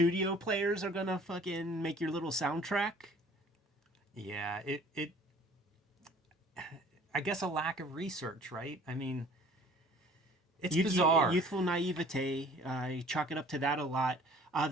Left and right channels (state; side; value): normal; both; correlation 0.52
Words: players, are gonna fucking make your little soundtrack? Yeah, it I guess a lack of research, right? I mean, it's bizarre. Youthful naivete. I chalk it up to that a lot.